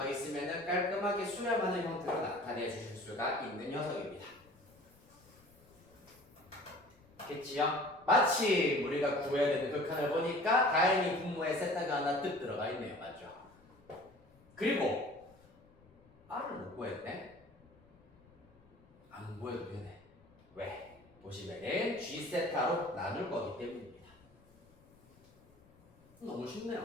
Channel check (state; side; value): noise; left; rumble, 28 dB below the sound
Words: 있으면 깔끔하게 수렴하는 형태로 나타내 주실 수가 있는 녀석입니다. 겠지요? 마침 우리가 구해야 되는 극한을 보니까 다행히 분모에 세타가 하나 뜩 들어가 있네요. 맞죠? 그리고 R을 못 구했네? 안 구해도 되네. 왜? 보시면은 G세타로 나눌 거기 때문입니다. 너무